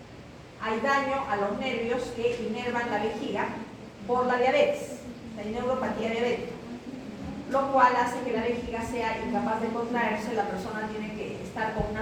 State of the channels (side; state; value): both; identical; correlation 1.00